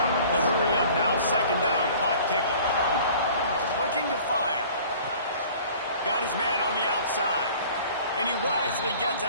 The hurry up now, 2nd down, clock ticking. Looking to fire. Got his man on the outside. And he wisely gets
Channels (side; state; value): both; inverted; correlation -0.48